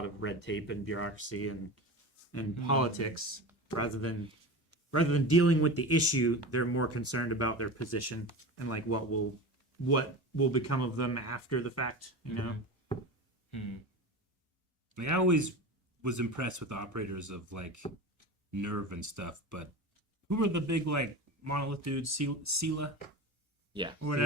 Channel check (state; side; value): normal; both; correlation 0.29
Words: of red tape and bureaucracy and politics rather than dealing with the issue. They're more concerned about their position and like what will become of them after the fact, you know. Like, I always was impressed with the operators of, like, Nerve and stuff, but who were the big, like, monolith dudes? Sela? Yeah. Or